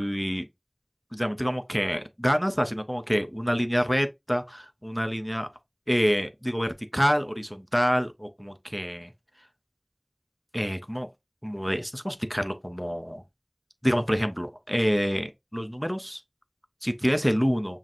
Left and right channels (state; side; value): identical; both; correlation 1.00